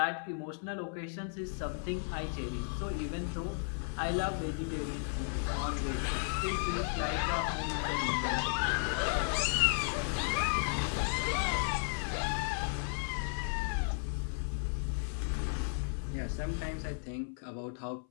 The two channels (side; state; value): right; silent; 55 dB below the other